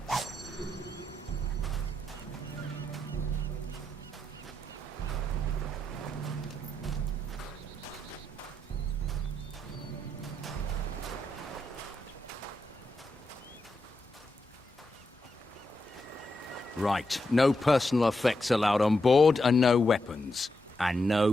Right, no personal effects allowed on board, and no weapons. And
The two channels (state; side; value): normal; both; correlation 0.84